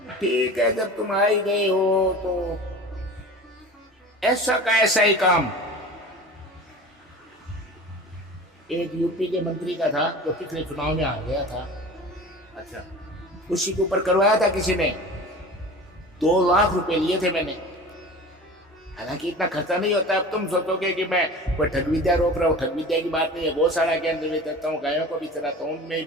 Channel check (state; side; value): normal; both; correlation 0.37